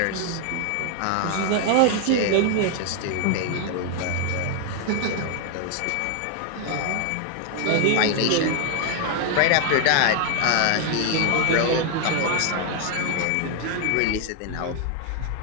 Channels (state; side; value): different; both; correlation 0.00